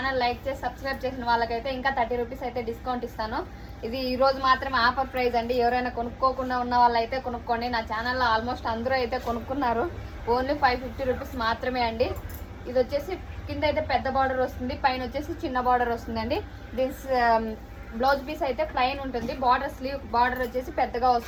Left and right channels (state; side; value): identical; both; correlation 1.00